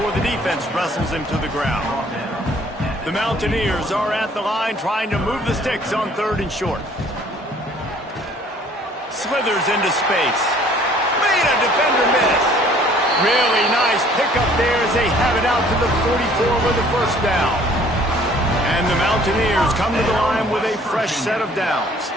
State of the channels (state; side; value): normal; both; correlation 0.56